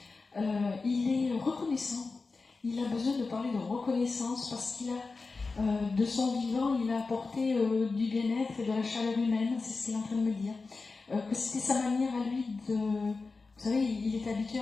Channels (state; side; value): quieter; right; 4.0 dB